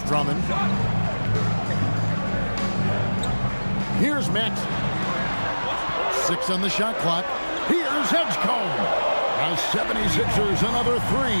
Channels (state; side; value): inverted; both; correlation -1.00